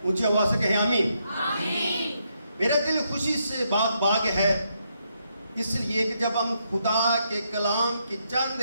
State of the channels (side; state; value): both; inverted; correlation -0.78